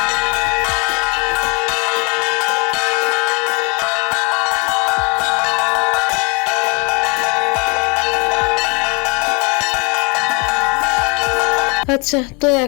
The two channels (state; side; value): quieter; right; 30.9 dB